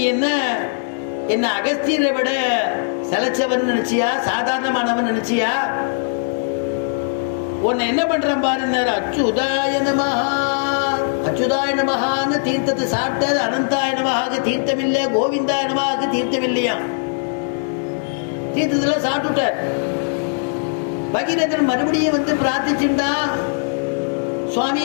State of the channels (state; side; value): silent; right; digital silence